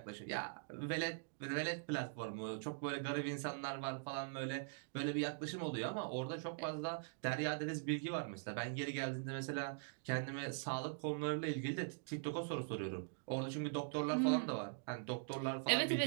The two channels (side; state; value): left; silent; digital silence